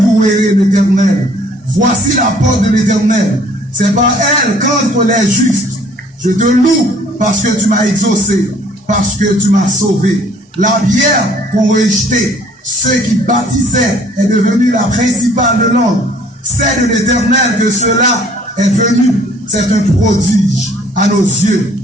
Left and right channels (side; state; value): both; normal; correlation 0.57